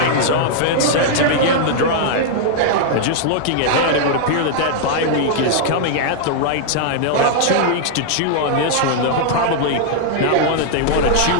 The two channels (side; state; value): both; different; correlation -0.01